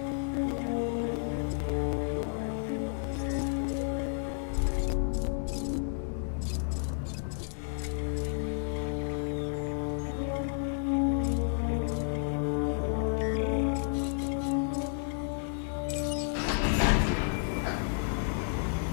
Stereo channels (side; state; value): right; silent; digital silence